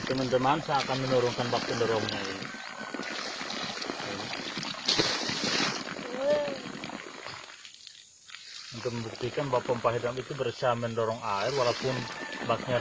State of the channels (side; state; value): both; identical; correlation 1.00